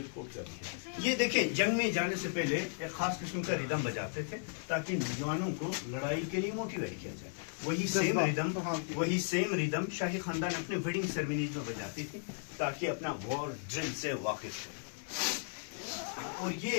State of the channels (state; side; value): silent; right; 54 dB below the other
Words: कोट कर दी है। ये देखें, जंग में जाने से पहले एक खास किस्म का रिदम बजाते थे ताकि नौजवानों को लड़ाई के लिए मोटिवेट किया जाए। वही सेम रिदम शाही खानदान अपने वेडिंग सेरेमनीज में बजाती थी ताकि अपना वॉर ड्रिल से वाकिफ रहे। और